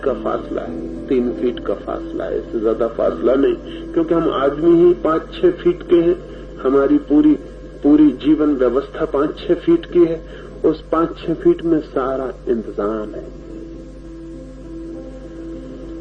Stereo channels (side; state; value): both; identical; correlation 1.00